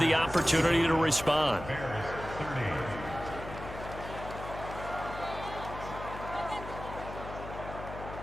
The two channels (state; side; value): noise; left; hum, 10 dB below the sound